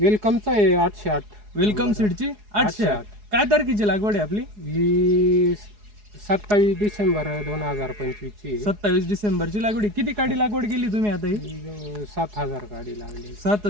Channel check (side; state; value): left; late; 4.8 ms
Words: आहे 808। वेलकम सीडची 808। काय तारखेची लागवड आहे आपली? ही 27 डिसेंबर 2025 ची 27 डिसेंबरची लागवड। किती काडी लागवड केली तुम्ही आता ही? 7000 गाडी लागली।